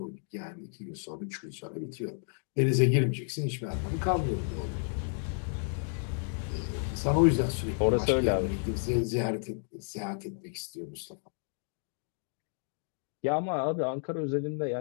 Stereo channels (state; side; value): silent; right; 56 dB below the other